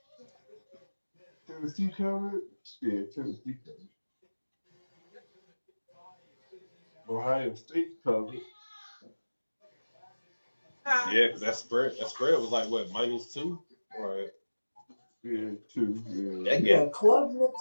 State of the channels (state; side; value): inverted; both; correlation -1.00